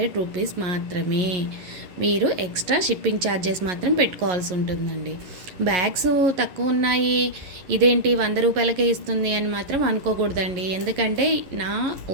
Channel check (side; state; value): left; late; 11 ms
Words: రూపీస్ మాత్రమే. మీరు ఎక్స్ట్రా షిప్పింగ్ ఛార్జెస్ మాత్రం పెట్టుకోవాల్సి ఉంటుందండి. బ్యాగ్స్ తక్కువ ఉన్నాయి, ఇదేంటి 100 రూపాయలకే ఇస్తుంది అని మాత్రం అనుకోకూడదండి. ఎందుకంటే నా